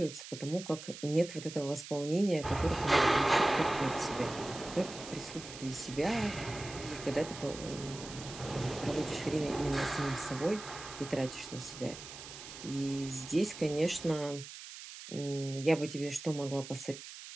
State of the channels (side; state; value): right; noise; hiss, 12 dB below the sound